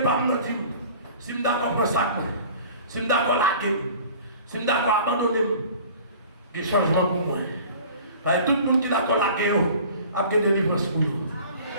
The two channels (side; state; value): both; inverted; correlation -0.45